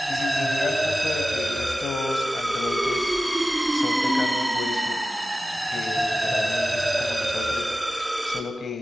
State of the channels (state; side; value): normal; both; correlation 0.94